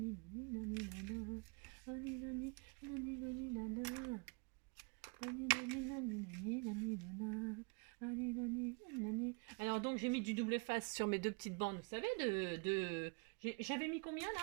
alors donc j'ai mis du double face sur mes deux petites bandes, vous savez, j'avais mis combien là?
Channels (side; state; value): left; quieter; 32.8 dB